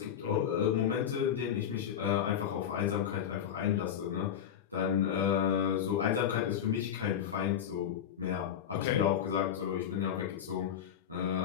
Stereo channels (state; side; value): quieter; right; 9.2 dB